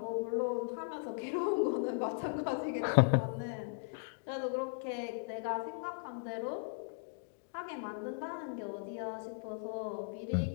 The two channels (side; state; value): right; silent; digital silence